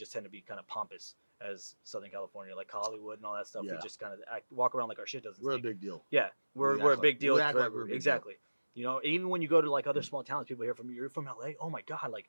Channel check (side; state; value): both; inverted; correlation -1.00